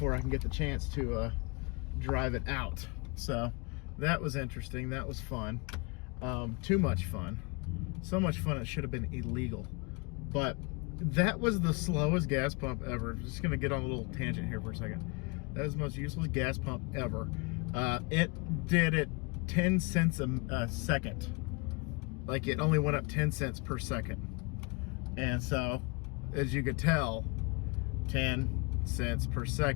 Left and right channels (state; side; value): quieter; right; 29.7 dB